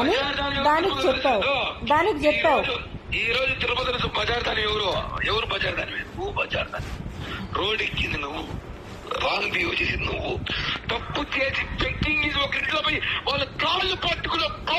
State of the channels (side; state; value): both; identical; correlation 1.00